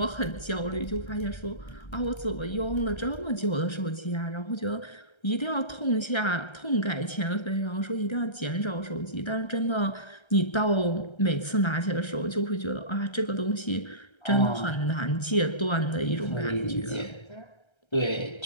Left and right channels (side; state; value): right; late; 1.3 ms